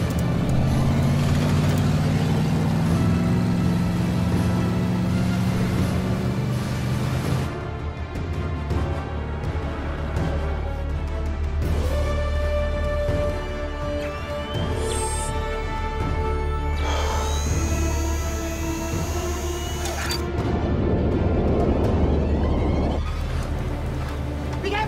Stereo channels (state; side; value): identical; both; correlation 1.00